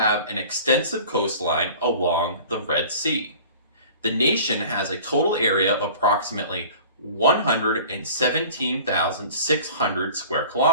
an extensive coastline along the Red Sea. The nation has a total area of approximately 117,600 square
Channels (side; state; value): both; inverted; correlation -0.44